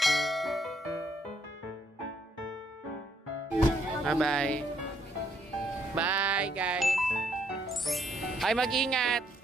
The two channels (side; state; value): both; normal; correlation 0.71